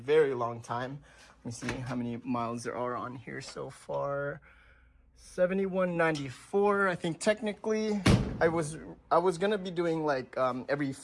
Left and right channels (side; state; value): both; identical; correlation 1.00